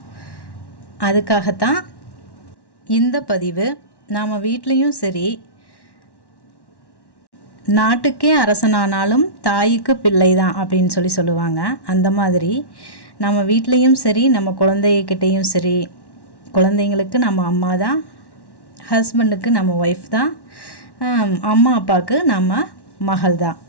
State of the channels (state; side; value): late; right; 1.1 ms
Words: அதுக்காகத்தான் இந்த பதிவு. நாம் வீட்லேயும் சரி, நாட்டுக்கே அரசனானாலும் தாய்க்கு பிள்ளை தான் அப்படின்னு சொல்லுவாங்க. அந்த மாதிரி நம்ம வீட்லேயும் சரி, நம்ம குழந்தைகிட்டையும் சரி, குழந்தைங்களுக்கு நம்ம அம்மா தான், ஹஸ்பண்டுக்கு நம்ம ஒய்ஃப் தான், அம்மா அப்பாவுக்கு நம்ம மகள் தான்.